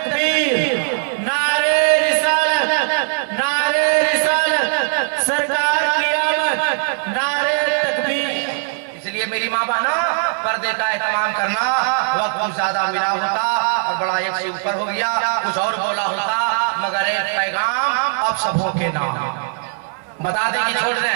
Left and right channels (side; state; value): left; silent; 56 dB below the other